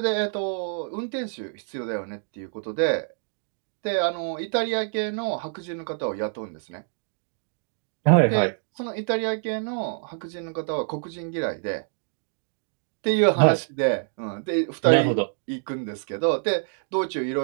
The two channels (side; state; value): left; silent; digital silence